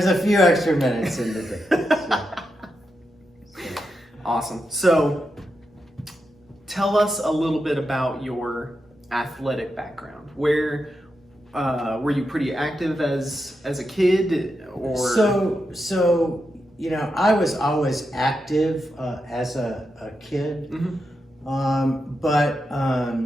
a few extra minutes in the day. Awesome. So tell us a little bit about your athletic background. Where were you pretty active as a kid, or? So you know, I was always active as a kid. Mm-hmm. But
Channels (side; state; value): both; normal; correlation 0.86